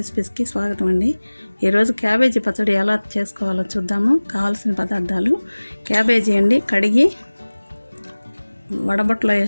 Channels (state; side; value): inverted; both; correlation -1.00